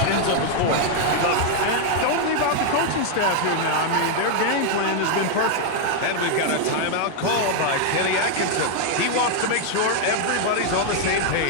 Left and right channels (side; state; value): both; different; correlation 0.00